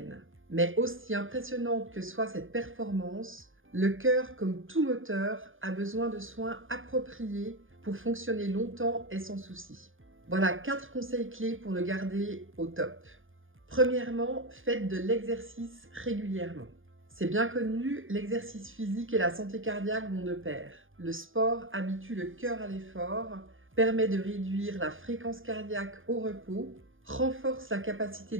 Mais aussi impressionnante que soit cette performance, le cœur, comme tout moteur, a besoin de soins appropriés pour fonctionner longtemps et sans souci. Voilà 4 conseils clés pour le garder au top. Premièrement, faites de l'exercice régulièrement. C'est bien connu, l'exercice physique et la santé cardiaque vont de pair. Le sport habitue le cœur à l'effort, permet de réduire la fréquence cardiaque au repos, renforce la capacité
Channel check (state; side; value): late; left; 0.58 ms